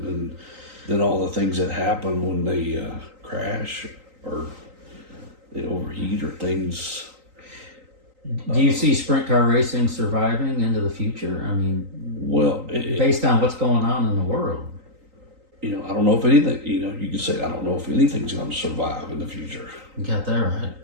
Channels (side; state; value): left; late; 3.9 ms